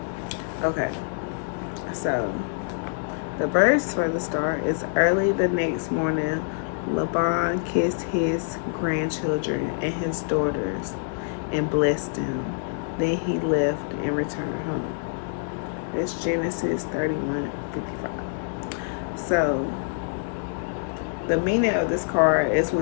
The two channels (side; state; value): right; silent; 61 dB below the other